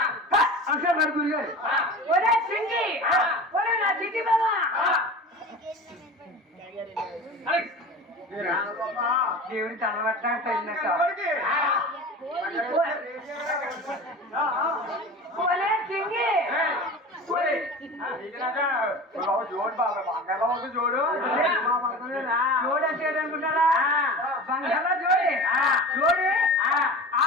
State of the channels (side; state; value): both; normal; correlation 0.34